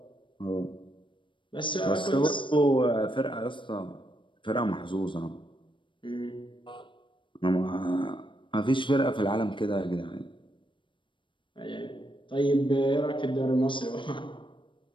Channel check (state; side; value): late; right; 0.24 ms